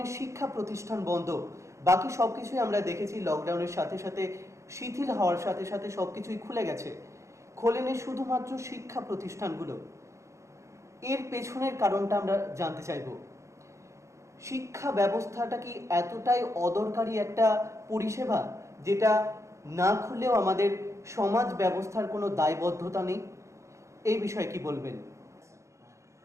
শিক্ষা প্রতিষ্ঠান বন্ধ, বাকি সব কিছুই আমরা দেখেছি লকডাউনের সাথে সাথে শিথিল হওয়ার সাথে সাথে সব কিছুই খুলে গেছে, খোলেনি শুধুমাত্র শিক্ষা প্রতিষ্ঠানগুলো। এর পেছনের কারণটা আমরা জানতে চাইব। শিক্ষা ব্যবস্থাটা কি এতটাই অদরকারি একটা পরিষেবা যেটা না খুললেও আমাদের সমাজ ব্যবস্থার কোনো দায়বদ্ধতা নেই? এই বিষয়ে কি বলবেন?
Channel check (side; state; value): left; late; 0.14 ms